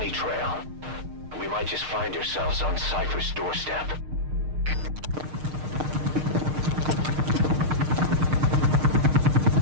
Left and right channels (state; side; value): late; left; 6.5 ms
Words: trail, and we might just find ourselves on Cypher's doorstep.